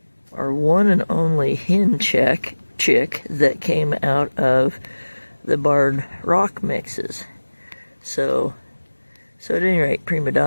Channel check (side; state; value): both; inverted; correlation -1.00